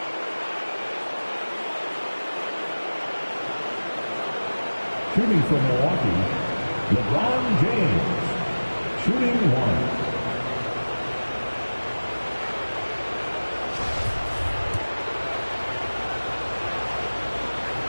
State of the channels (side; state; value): both; inverted; correlation -1.00